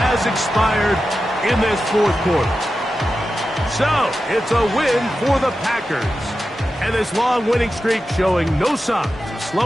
has expired in this 4th quarter. So, it's a win for the Packers. And this long winning streak showing no signs of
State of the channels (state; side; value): normal; both; correlation 0.92